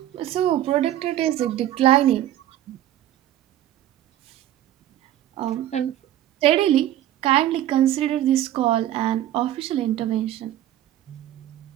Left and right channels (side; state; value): left; quieter; 12.8 dB